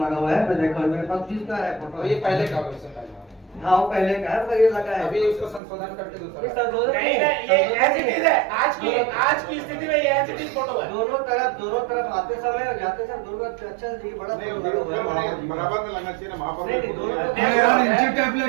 लगा हुआ है। मैं देखा मेरे पास जिसका है फोटो, ये पहले का हाँ वो पहले का है, पर ये लगा है अभी उसको संशोधन करके दूसरा नहीं, ये एज इट इज है। आज की स्थिति में ये एज इट इज फोटो है। दोनों तरफ आते समय और जाते समय दोनों अच्छा से बड़ा बराबर में लगना चाहिए ना महापौर।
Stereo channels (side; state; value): left; drops out; at 5.6 s